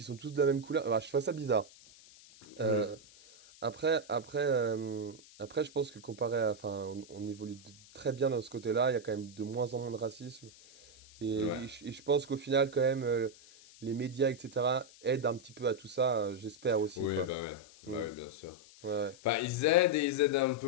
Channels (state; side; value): noise; left; hiss, 22 dB below the sound